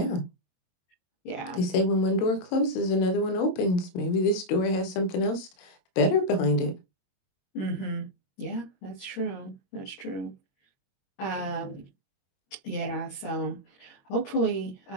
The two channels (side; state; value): right; late; 22 ms